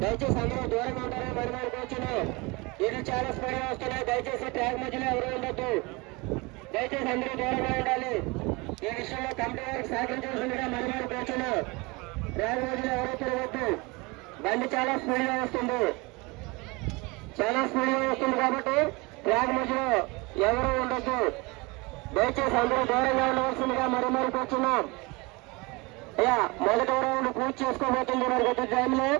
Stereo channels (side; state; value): left; quieter; 25.8 dB